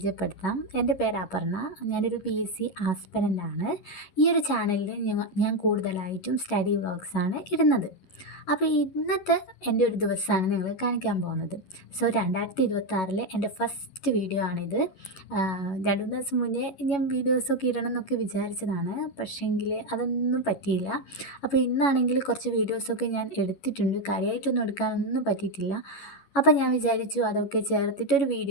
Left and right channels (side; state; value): right; late; 11 ms